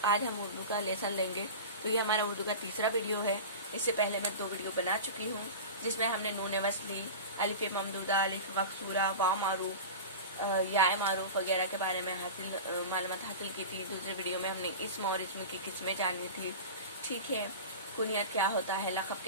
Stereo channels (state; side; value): inverted; both; correlation -0.30